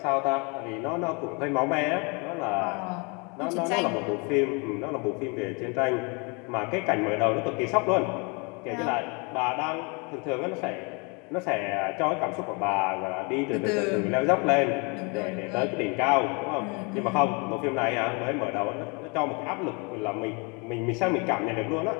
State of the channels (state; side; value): quieter; right; 31.5 dB